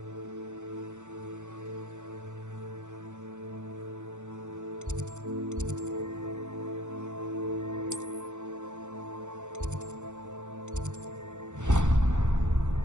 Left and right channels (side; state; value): left; late; 0.85 ms